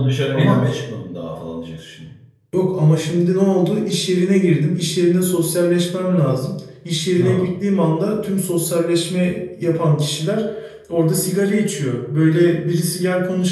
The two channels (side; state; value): both; identical; correlation 1.00